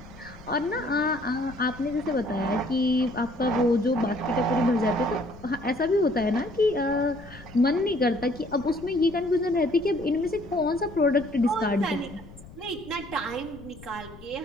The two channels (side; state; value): left; noise; rumble, 19 dB below the sound